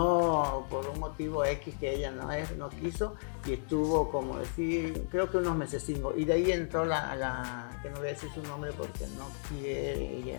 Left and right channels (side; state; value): right; silent; digital silence